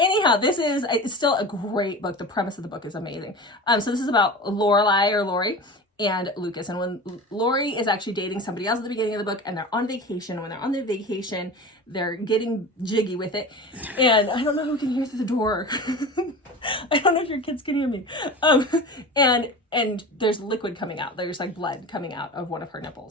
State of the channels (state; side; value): normal; both; correlation 0.32